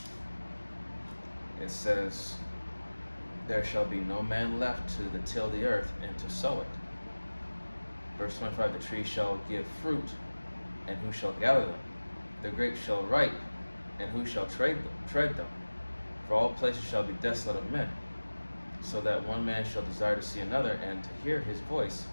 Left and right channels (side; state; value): both; inverted; correlation -1.00